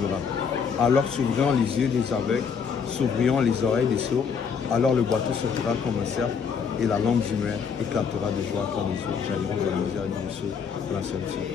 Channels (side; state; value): right; quieter; 6.3 dB